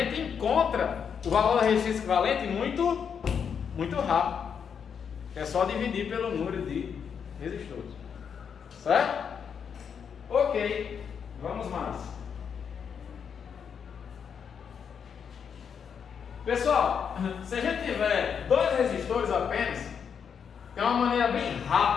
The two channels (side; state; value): right; quieter; 7.1 dB